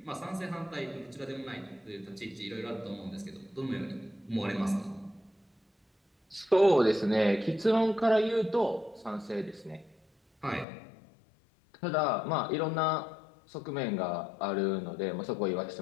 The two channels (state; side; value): drops out; right; at 10.7 s